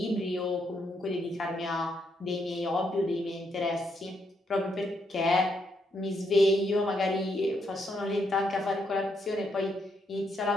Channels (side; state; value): both; normal; correlation 0.77